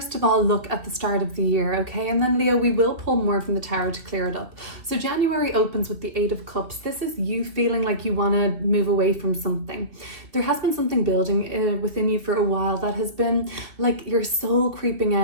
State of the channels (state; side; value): late; left; 2.5 ms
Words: of all look at the start of the year, okay? And then Leo, we will pull more from the tarot to clear it up. So January opens with the Eight of Cups. This is you feeling like you want to move away from something. There has been something building within you for a while that has been like your soul creeping